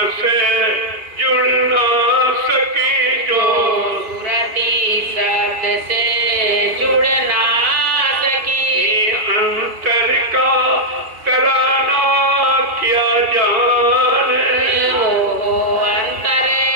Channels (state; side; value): late; left; 2.4 ms